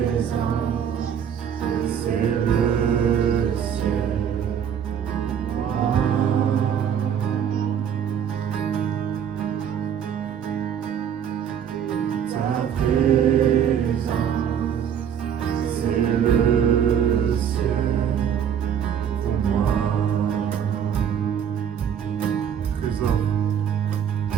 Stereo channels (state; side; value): quieter; left; 8.5 dB